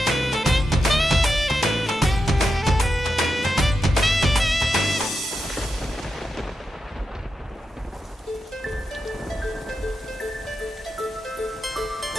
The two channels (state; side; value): normal; both; correlation 0.88